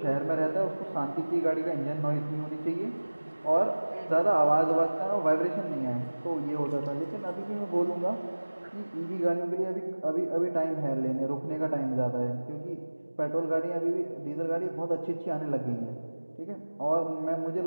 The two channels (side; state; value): both; inverted; correlation -1.00